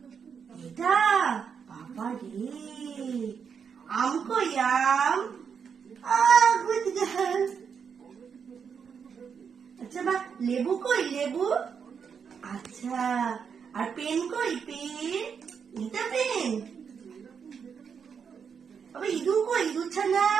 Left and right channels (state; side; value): quieter; left; 6.7 dB